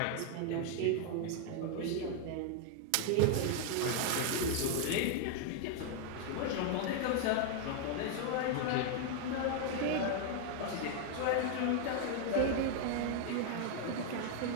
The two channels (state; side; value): different; both; correlation 0.00